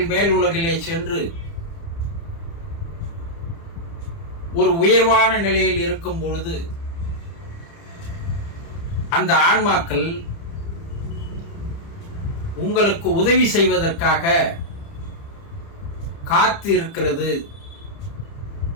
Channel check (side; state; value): right; late; 30 ms